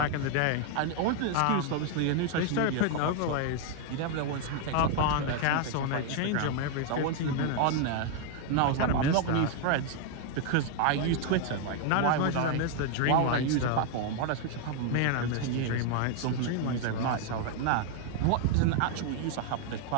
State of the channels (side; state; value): both; different; correlation 0.00